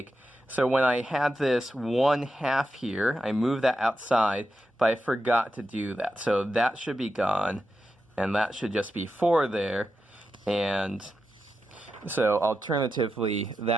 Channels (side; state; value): both; normal; correlation 0.89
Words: So when I had this 1/2 here, I moved that outside, but I forgot to do that. So that should be gone, and that should just be 4 there. And so alternatively,